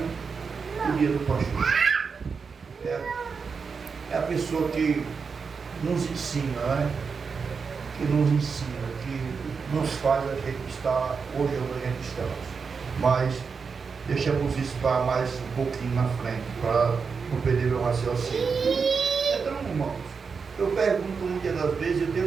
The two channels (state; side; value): quieter; left; 5.4 dB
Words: o dia do pastor. É a pessoa que nos ensina, que nos ensina, que nos faz a gente estar hoje onde a gente está. Mas deixamos isso para mais um pouquinho na frente, para não perder meu raciocínio. Então, irmãos, eu pergunto muitas das vezes, eu